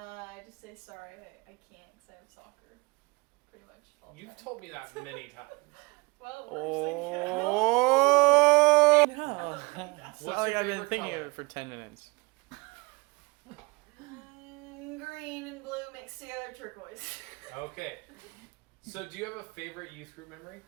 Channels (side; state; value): left; quieter; 26.7 dB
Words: just say sorry, I can't because I have soccer, pretty much all the You've time. told me that many times. Well, Oh no! What's It's not like your I've been favorite thinking color? of it for 10 minutes. green and blue mixed together, turquoise. Okay. So do you have a favorite youth group memory?